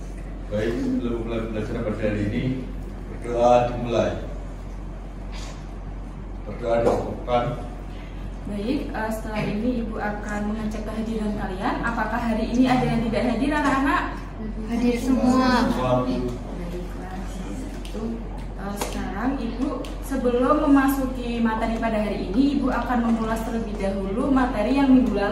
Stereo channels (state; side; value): identical; both; correlation 1.00